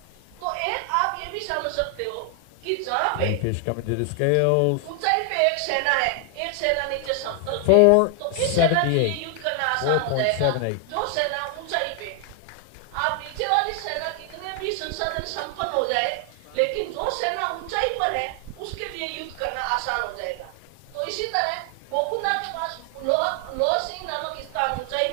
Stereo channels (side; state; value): both; different; correlation 0.00